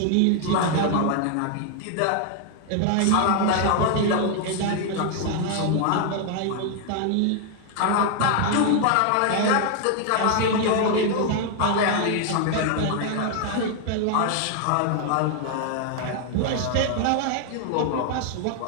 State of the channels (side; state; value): both; different; correlation 0.00